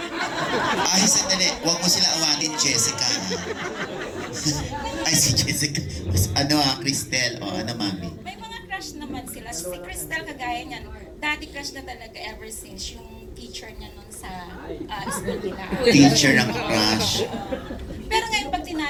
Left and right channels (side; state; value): both; identical; correlation 1.00